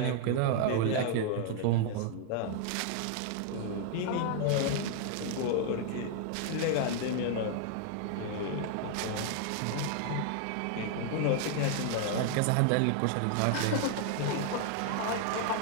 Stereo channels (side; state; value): both; different; correlation 0.00